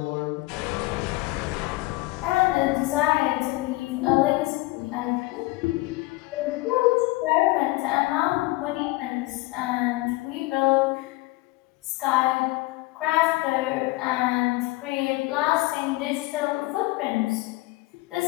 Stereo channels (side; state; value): right; quieter; 21.4 dB